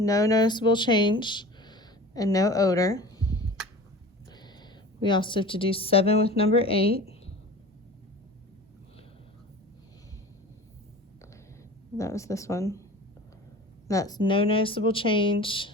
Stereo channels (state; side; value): normal; both; correlation 0.37